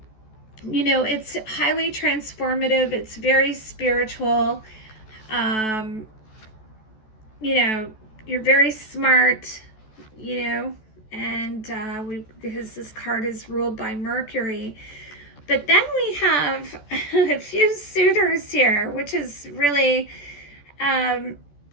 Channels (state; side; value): late; right; 14 ms